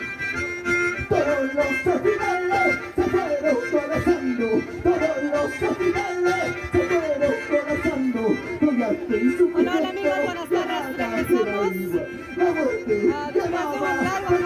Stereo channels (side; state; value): both; identical; correlation 1.00